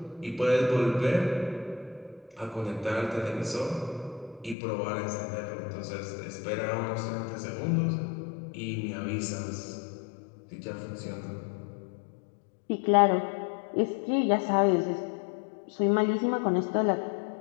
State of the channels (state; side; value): drops out; right; at 4.5 s